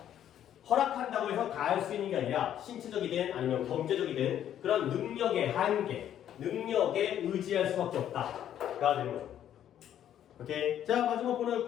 허락한다고 해서 다 할 수 있는 게 아니라 신체적이든 아니면 경제적이든 그런 능력의 한계, 능력에 의지할 수밖에 없다가 되는 거죠. 오케이. 자 마지막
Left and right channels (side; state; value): right; quieter; 10.6 dB